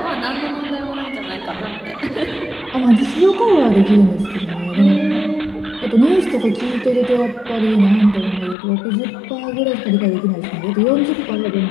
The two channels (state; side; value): drops out; right; at 8.6 s